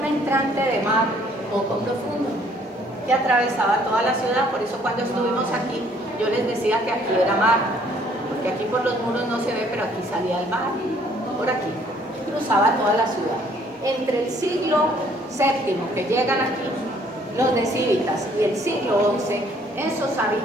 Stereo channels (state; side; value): normal; both; correlation 0.62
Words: entrante de mar poco profundo que atravesaba toda la ciudad. Por eso cuando estuvimos aquí, yo les decía que aquí era mar, porque aquí por los muros no se ve, pero aquí salía el mar, por aquí, cruzaba toda la ciudad. Entre el siglo VII que llegan aquí, los de Civitas, y el siglo XI, esos